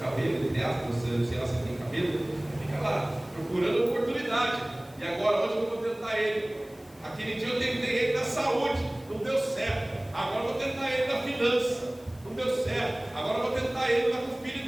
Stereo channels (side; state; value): left; noise; hiss, 27 dB below the sound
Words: entre aspas, sei lá se tem cabelo, ele fica lá, procurando oportunidade. E agora onde que eu vou tentar ele? Aquele dia eu tentei ele na saúde, não deu certo. Agora eu vou tentar ele na finança, não deu certo. Agora eu vou tentar ele lá com o filho